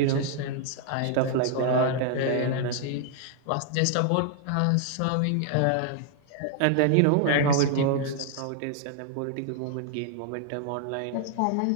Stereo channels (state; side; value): different; both; correlation 0.00